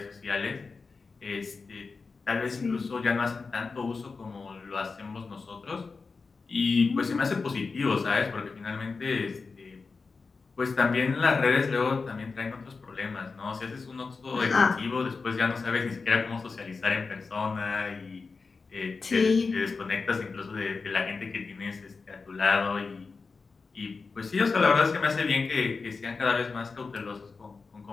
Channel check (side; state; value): right; quieter; 4.5 dB